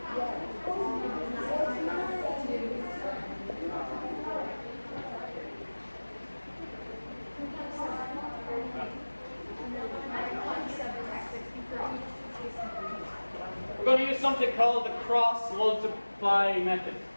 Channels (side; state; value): both; inverted; correlation -1.00